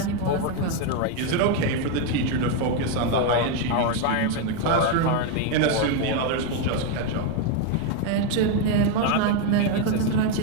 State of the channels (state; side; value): different; both; correlation 0.02